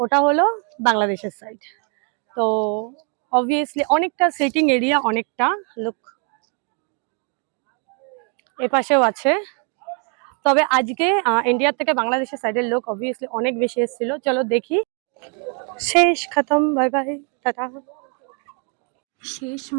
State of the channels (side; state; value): left; quieter; 38.6 dB